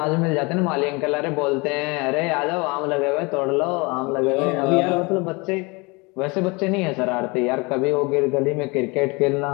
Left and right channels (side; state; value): right; quieter; 27.1 dB